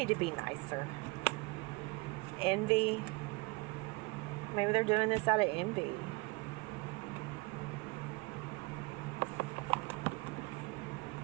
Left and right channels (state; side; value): quieter; left; 25.6 dB